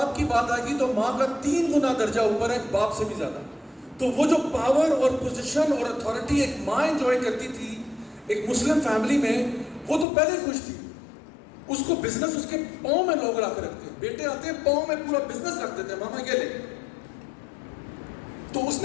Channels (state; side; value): drops out; right; at 10.1 s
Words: کی بات آئے گی تو ماں کا 3 گنا درجہ اوپر ہے باپ سے بھی زیادہ۔ تو وہ جو پاور اور پوزیشن اور اتھارٹی ایک ماں انجوائے کرتی تھی ایک مسلم فیملی میں، وہ تو پہلے خوش تھی، اس کو بزنس اس کے پاؤں میں لوگ لا کے رکھتے ہیں، بیٹے آتے ہیں پاؤں میں پورا بزنس رکھ دیتے ہیں، ماما یہ لے۔ تو اس